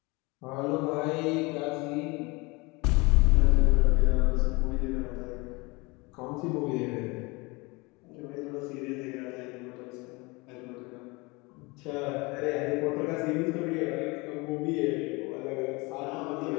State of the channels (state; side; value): quieter; right; 25.8 dB